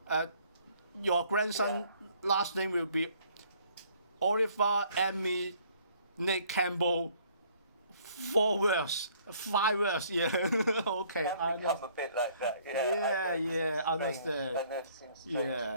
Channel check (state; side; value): inverted; both; correlation -0.61